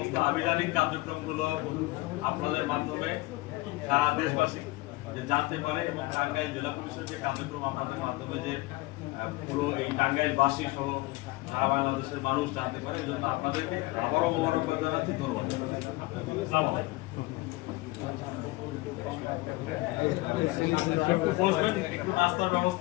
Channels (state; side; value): quieter; right; 21.2 dB